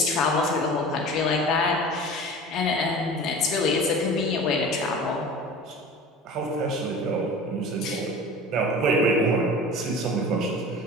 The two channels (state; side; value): normal; both; correlation 0.37